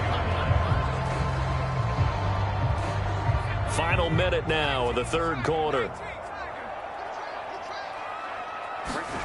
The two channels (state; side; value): identical; both; correlation 1.00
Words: Final minute now of the third quarter.